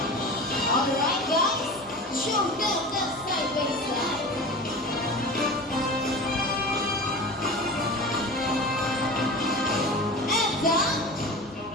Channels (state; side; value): normal; both; correlation 0.32